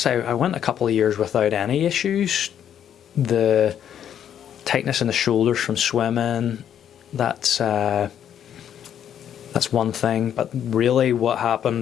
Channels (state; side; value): quieter; right; 9.5 dB